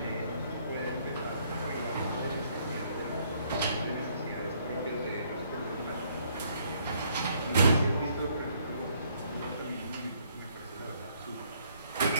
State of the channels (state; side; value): inverted; both; correlation -0.67